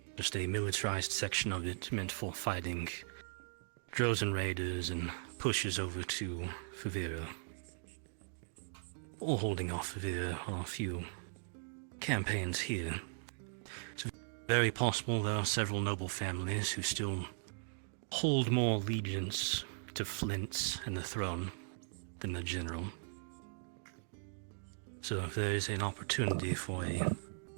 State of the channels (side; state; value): left; silent; digital silence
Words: Just a militarized section of it meant for fighting Drozen raiders and pushes over to Favira. Or holding off Favira on a few campaigns here. It's very possible there are several noble families who still hold more allegiance to Flint's and the throne than the general. So if there is an opportunity for